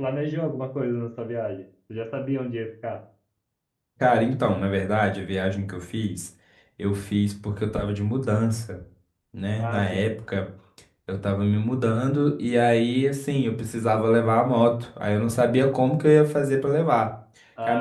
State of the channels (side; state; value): both; identical; correlation 1.00